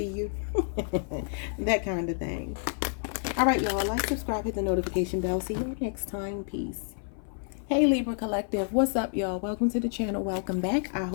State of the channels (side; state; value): right; silent; 58 dB below the other